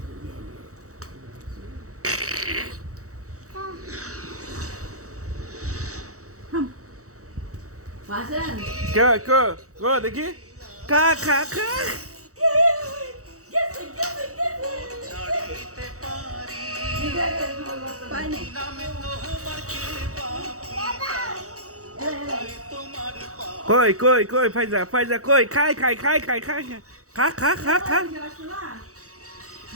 কে কে দেখি খা খা খা কই কই কই ফাইজা ফাইজা কই খাই খাই খাই খাই খাই খা খা খা খা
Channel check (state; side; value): late; left; 0.65 ms